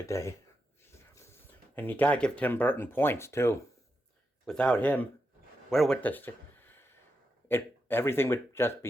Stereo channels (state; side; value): normal; both; correlation 0.86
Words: And you gotta give Tim Burton points too. Without him, where would this it everything would just